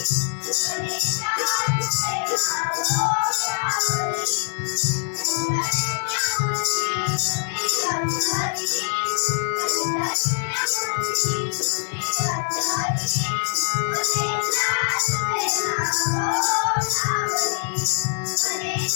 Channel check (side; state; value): right; silent; digital silence